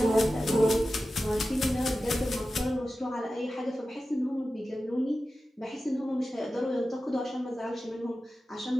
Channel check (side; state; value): both; normal; correlation 0.94